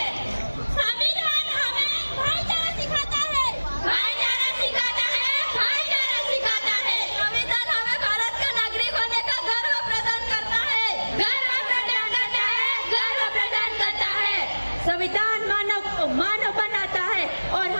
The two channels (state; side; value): inverted; both; correlation -1.00